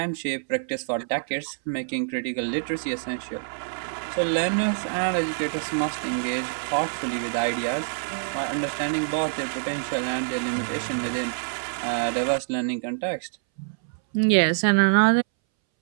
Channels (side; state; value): left; silent; 61 dB below the other